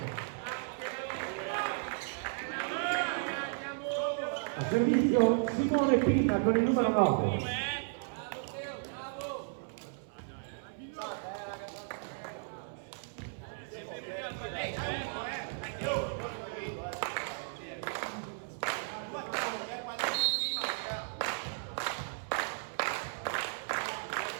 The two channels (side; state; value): left; silent; 55 dB below the other